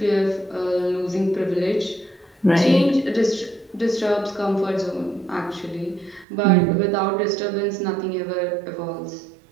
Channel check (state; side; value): drops out; left; at 6.2 s